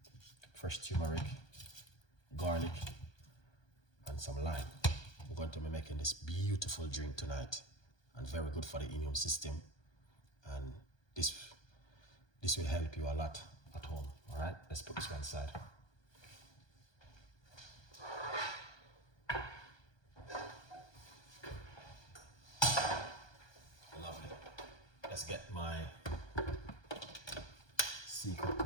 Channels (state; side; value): late; right; 1.2 ms